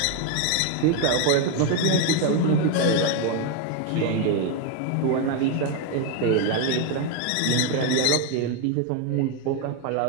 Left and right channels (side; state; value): both; different; correlation 0.01